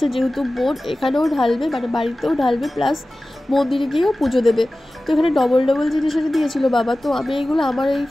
যেহেতু বোন এখানেও ঢালবে, মানে বাড়িতেও ঢালবে, প্লাস মন্দিরে গিয়েও পুজো দেবে। তো এখানে ডবল ডবল জিনিস এনে দিয়েছিল বাবা। তো আমি এইগুলো আমার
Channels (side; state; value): both; normal; correlation 0.96